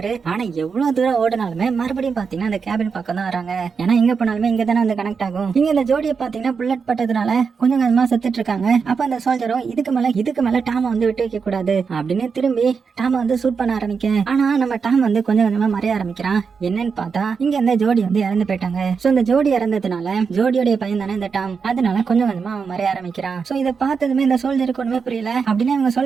ஆனா எவ்வளவு தூரம் ஓடினாலுமே மறுபடியும் பாத்தீங்கன்னா அந்த கேபின் பக்கம் தான் வராங்க. ஏன்னா இங்க போனாலுமே இங்க தானே வந்து கனெக்ட் ஆகும். இங்க இந்த ஜோடியை பாத்தீங்கன்னா புல்லட் பட்டதுனால கொஞ்சம் கொஞ்சமா செத்துட்டு இருக்காங்க. அப்ப அந்த சோல்ஜரும் இதுக்கு மேல டாம வந்து விட்டு வைக்க கூடாது அப்படின்னு திரும்பி டாம வந்து சூட் பண்ண ஆரம்பிக்க, ஆனா நம்ம டாம் வந்து கொஞ்சம் கொஞ்சமா மறைய ஆரம்பிக்கிறான். என்னன்னு பார்த்தா இங்க இந்த ஜோடி வந்து இறந்து போயிட்டாங்க. சோ இந்த ஜோடி இறந்ததுனால ஜோடியோட பையன் தானே இந்த டாம், அதனால கொஞ்சம் கொஞ்சமா அவன் மறைய ஆரம்பிக்கிறான். சோ இதை பார்த்ததுமே இந்த சோல்ஜருக்கு ஒண்ணுமே புரியல. அப்படின்னு இவங்க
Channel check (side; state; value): left; quieter; 5.6 dB